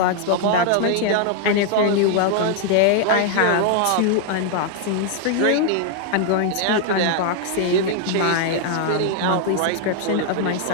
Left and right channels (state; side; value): different; both; correlation 0.00